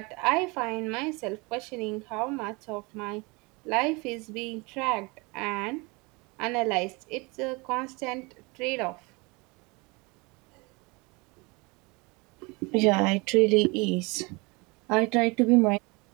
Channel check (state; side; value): quieter; left; 27.1 dB